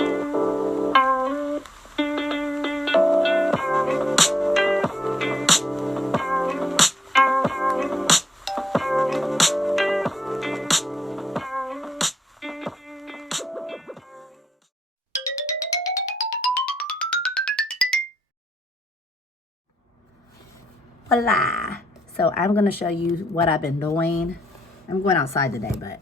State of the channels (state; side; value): normal; both; correlation 0.79